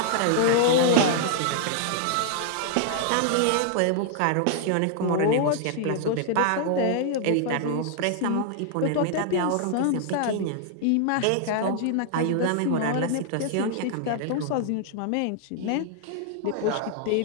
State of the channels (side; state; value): both; different; correlation -0.01